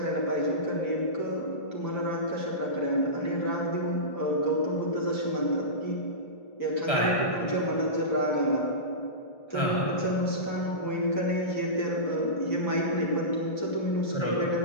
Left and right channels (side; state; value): right; late; 1.3 ms